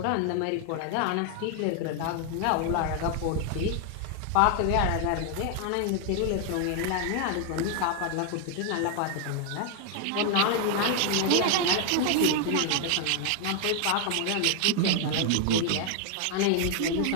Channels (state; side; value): different; both; correlation 0.00